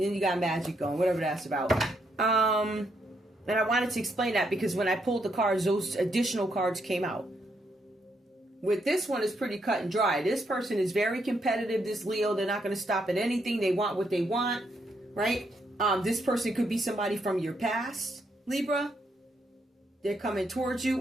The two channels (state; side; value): normal; both; correlation 0.76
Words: you got magic going, whatever that's about. And I wanted to explain that because when I pulled the cards, those additional cards came out. With this one, it's pretty cut and dry. This person is very competitive, this Leo. They're not going to stop at anything. They want what they want, right? This person could be somebody from your past, Libra. They're coming towards you.